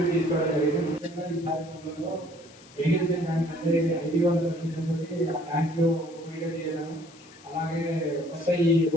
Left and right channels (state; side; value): noise; left; hiss, 24 dB below the sound